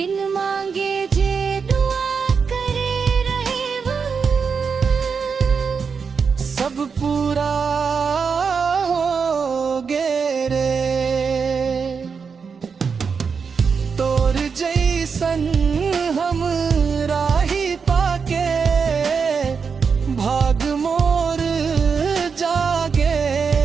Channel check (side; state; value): left; quieter; 5.7 dB